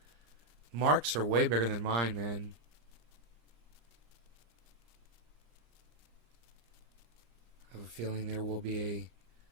Marks are way bigger than mine, man. I have a feeling there will be a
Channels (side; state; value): left; late; 34 ms